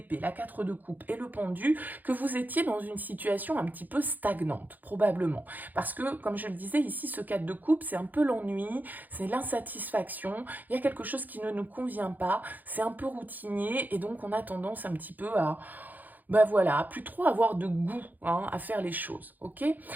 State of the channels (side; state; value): left; late; 0.084 ms